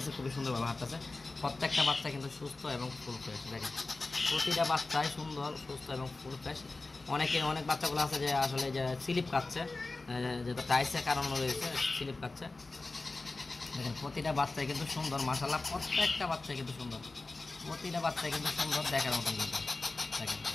খুবই সুন্দরভাবে হাঁটতেছে। প্রত্যেকটা বাচ্চা কিন্তু সুস্থ এবং ফুল ফ্রেশ। দেখেন প্রতিটা বাচ্চাই সুন্দর, সুস্থ এবং ফুল ফ্রেশ। অনেক বাচ্চাগুলো আছে যে আসলে যে স্লিপ খাচ্ছে, যেটা টাইসের কারণ রয়েছে, স্লিপ খাচ্ছে। দেখেন প্রতিটা বাচ্চাই কিন্তু সুন্দর, মাশাআল্লাহ প্রত্যেকটা বাচ্চাই কিন্তু সুন্দর, দেখার মতন কিন্তু। দেখেন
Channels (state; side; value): quieter; right; 3.4 dB